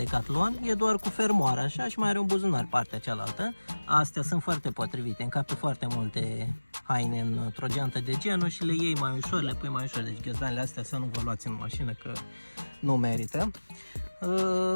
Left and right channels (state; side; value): inverted; both; correlation -1.00